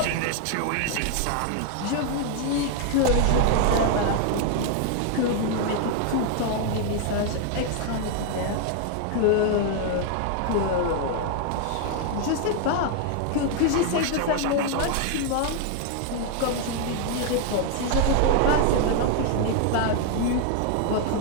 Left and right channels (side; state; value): both; different; correlation 0.00